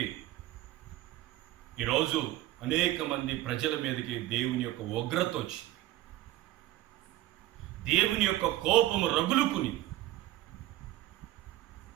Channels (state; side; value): quieter; left; 15.7 dB